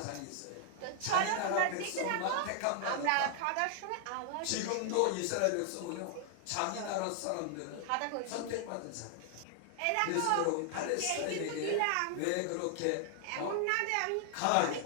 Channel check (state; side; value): different; both; correlation 0.00